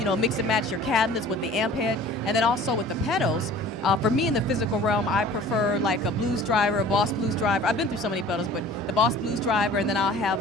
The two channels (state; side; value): normal; both; correlation 0.46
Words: mix and match your cabinets with the amp head. And then also with the pedals, for me in the physical realm, I prefer like a Blues Driver, a Boss Blues Driver. I've been through so many pedals, but the Boss Blues Driver, and then I'll